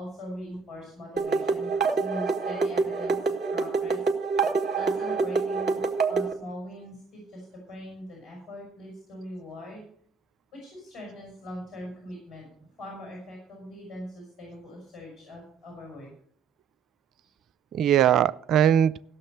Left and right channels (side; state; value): left; quieter; 5.9 dB